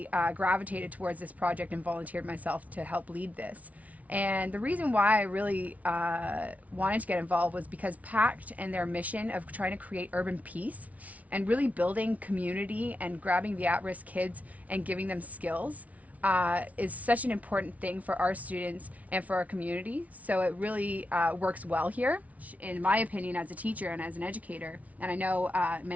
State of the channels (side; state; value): left; late; 0.069 ms